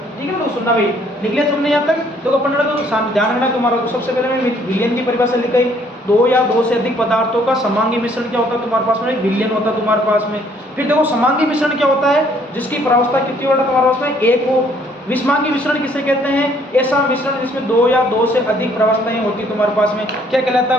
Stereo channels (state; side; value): normal; both; correlation 0.63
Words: ठीक है ना। तो सुनना भाई, निकले तुमने यहाँ तक, देखो अपन को ध्यान रखना तुम्हारा। तो सबसे पहले मैं विलयन की परिभाषा लिखाई, दो या दो से अधिक पदार्थों का समांगी मिश्रण क्या होता है तुम्हारे पास में, एक विलयन होता है तुम्हारे पास में। फिर देखो समांगी मिश्रण क्या होता है, जिसकी प्रावस्था कितनी होता है तुम्हारे पास में, एक हो। विषमांगी मिश्रण किसे कहते हैं, ऐसा मिश्रण जिसमें दो या दो से अधिक प्रावस्थाएं होती तुम्हारे पास में, क्या कहलाता